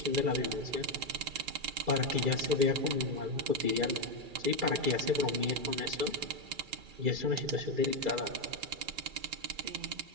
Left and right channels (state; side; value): late; left; 2.3 ms